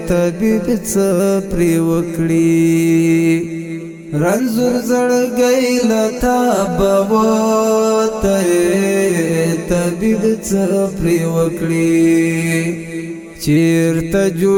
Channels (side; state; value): both; identical; correlation 1.00